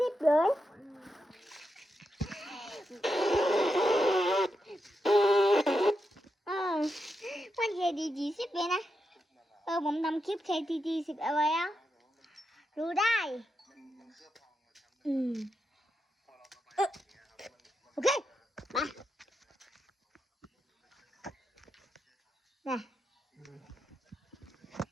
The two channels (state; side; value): normal; both; correlation 0.86